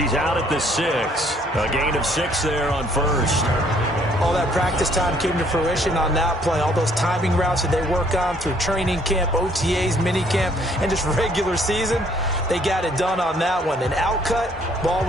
out at the 6. A gain of 6 there on 1st. All that practice time came to fruition on that play. All those timing routes that they work on through training camp, OTAs, minicamp, and just regular season, they got it done on that one. An outcut, ball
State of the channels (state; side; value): normal; both; correlation 0.63